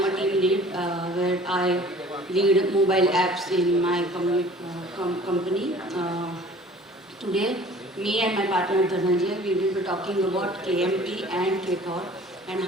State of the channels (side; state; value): both; normal; correlation 0.48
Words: a team lead where I lead mobile apps in my company. Today, me and my partner Dhananjay, we will be talking about KMP and KTOR and